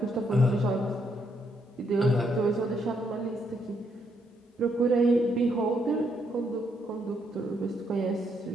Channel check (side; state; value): both; normal; correlation 0.75